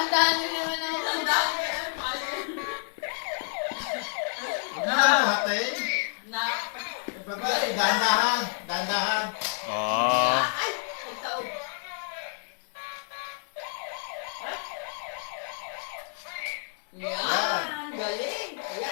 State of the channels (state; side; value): silent; right; digital silence